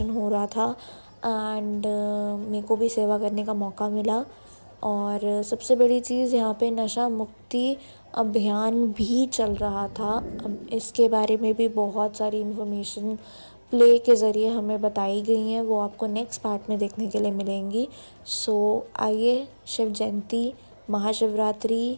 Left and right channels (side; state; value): both; inverted; correlation -1.00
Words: हो रहा था एंड मेरे को भी सेवा करने का मौका मिला। और सबसे बड़ी चीज़ यहाँ पे नशा मुक्ति अभियान भी चल रहा था। अब इसके बारे में भी बहुत सारी इन्फॉर्मेशन प्ले के ज़रिए हमें बताई गई हैं, वो आपको नेक्स्ट पार्ट में देखने के लिए मिलेंगी। सो आइए शिव जयंती महाशिवरात्रि